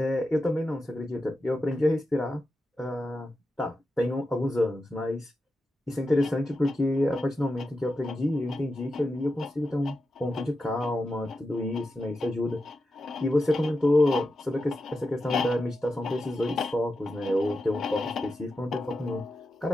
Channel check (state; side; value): normal; both; correlation 0.89